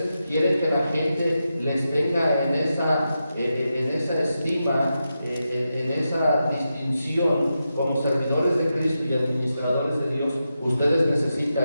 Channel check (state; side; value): inverted; both; correlation -0.88